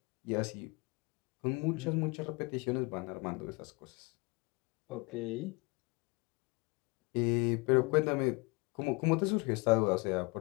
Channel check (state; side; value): quieter; right; 27.6 dB